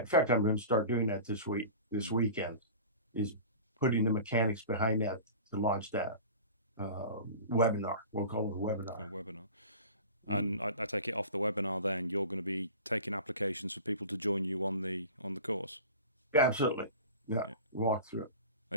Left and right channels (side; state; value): both; inverted; correlation -0.37